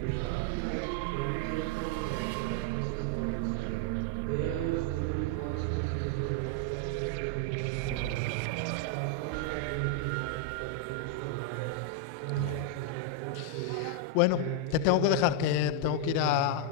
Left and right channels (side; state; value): both; different; correlation 0.00